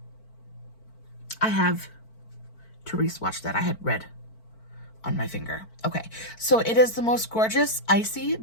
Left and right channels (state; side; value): late; right; 4.5 ms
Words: I have to re-swatch that. I had red on my finger. Okay, so it is the most gorgeous icy